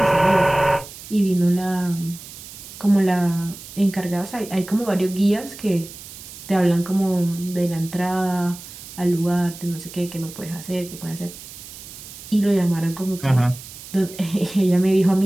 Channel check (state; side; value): noise; right; hiss, 15 dB below the sound